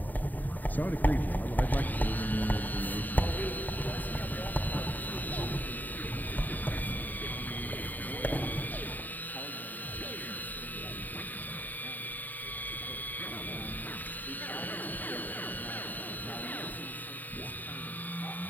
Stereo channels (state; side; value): late; right; 0.085 ms